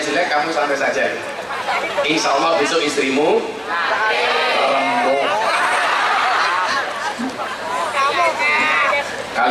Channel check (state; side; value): identical; both; correlation 1.00